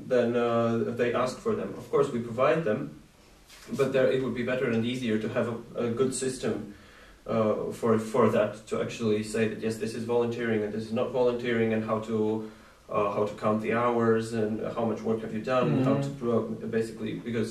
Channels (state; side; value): identical; both; correlation 1.00